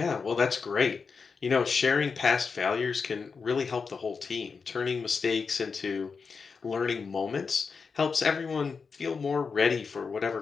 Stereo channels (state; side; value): quieter; right; 5.2 dB